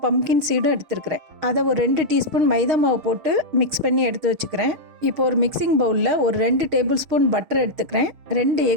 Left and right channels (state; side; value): late; left; 6.4 ms